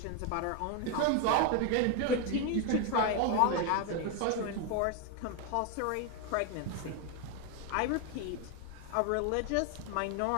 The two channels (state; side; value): different; both; correlation 0.01